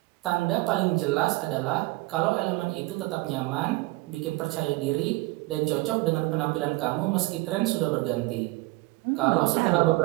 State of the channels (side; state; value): left; quieter; 22.1 dB